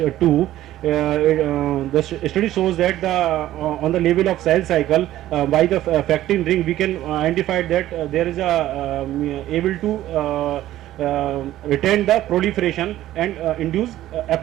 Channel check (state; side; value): quieter; left; 14.0 dB